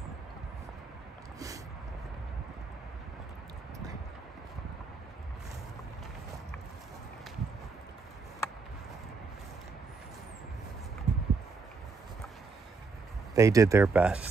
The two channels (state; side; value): quieter; left; 4.4 dB